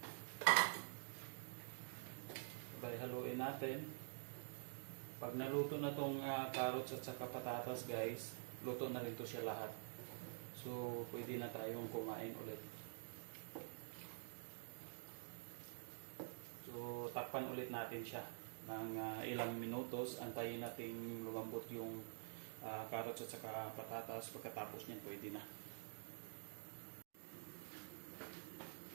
Sabay haluin natin. Pag naluto na tong carrots at saka patatas guys, luto na rin to siya lahat. So pwede na tayong kumain ulit. So takpan ulit natin siya ng ilang minutos, antayin natin lumambot yung carrots at saka patatas. Pagkatapos niyan pwede na.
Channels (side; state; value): left; silent; digital silence